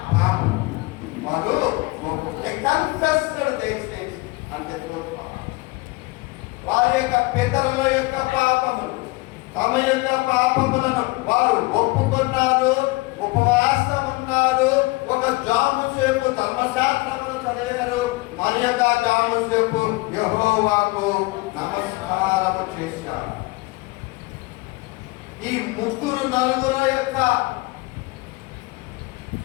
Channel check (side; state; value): right; quieter; 23.3 dB